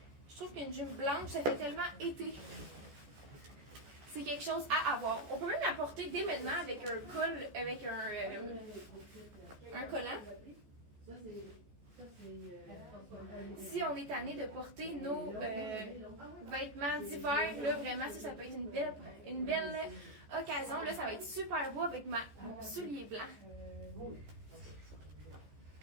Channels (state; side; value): late; left; 14 ms